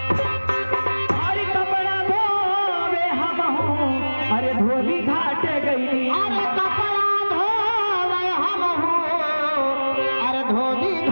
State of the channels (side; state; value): both; inverted; correlation -1.00